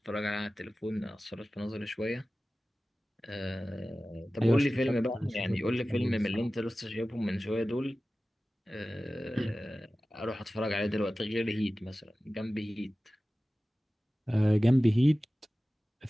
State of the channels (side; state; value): both; normal; correlation 0.96